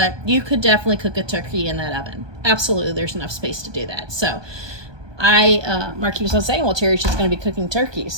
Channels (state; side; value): late; left; 1.2 ms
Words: you could definitely cook a turkey in that oven. Absolutely, there's enough space to do that. So Mark keeps on saying, well, Terry's just going to be cooking turkeys.